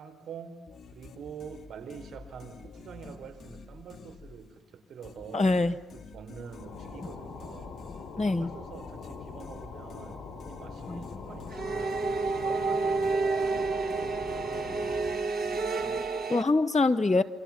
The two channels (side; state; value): both; normal; correlation 0.81